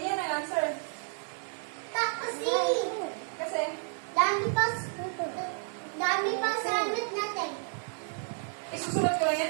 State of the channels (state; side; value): silent; left; 57 dB below the other